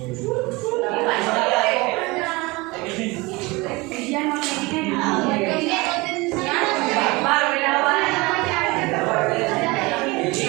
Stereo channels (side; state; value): left; quieter; 23.9 dB